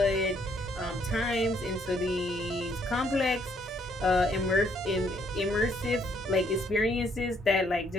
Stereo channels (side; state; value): both; normal; correlation 0.68